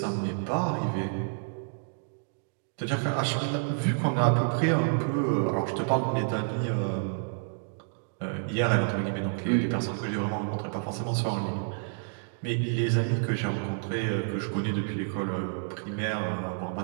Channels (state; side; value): silent; left; digital silence